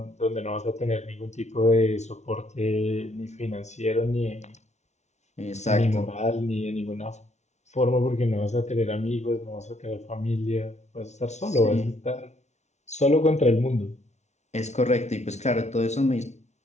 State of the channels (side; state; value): right; late; 0.32 ms